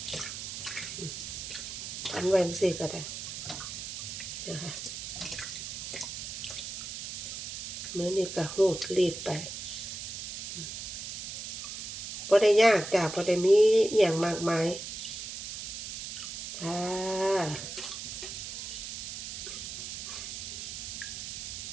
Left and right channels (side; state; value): right; noise; hiss, 7 dB below the sound